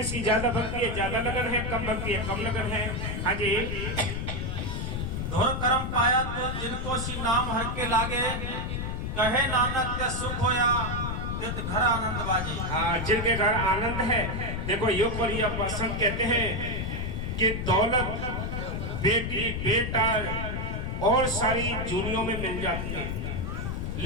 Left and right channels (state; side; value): noise; left; rumble, 3 dB below the sound